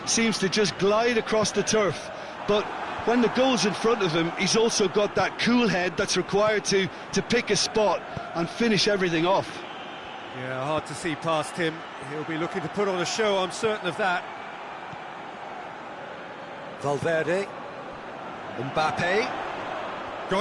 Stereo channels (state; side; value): identical; both; correlation 1.00